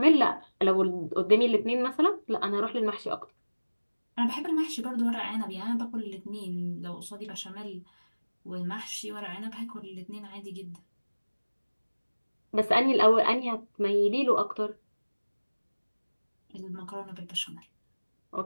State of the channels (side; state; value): both; inverted; correlation -1.00